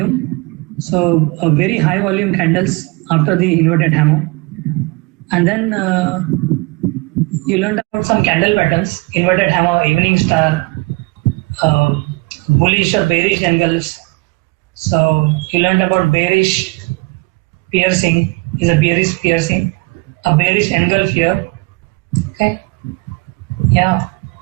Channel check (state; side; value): quieter; left; 25.6 dB